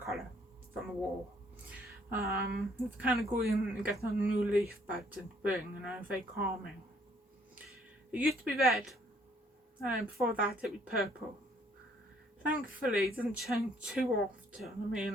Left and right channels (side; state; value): both; normal; correlation 0.64